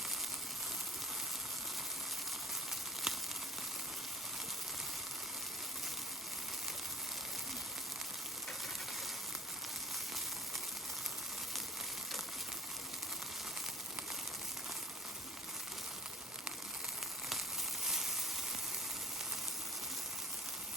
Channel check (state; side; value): normal; both; correlation 0.41